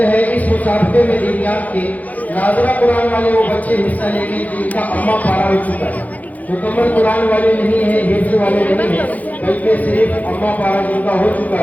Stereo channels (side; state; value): right; late; 0.077 ms